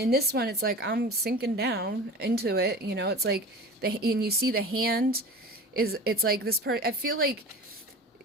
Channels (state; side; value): normal; both; correlation 0.35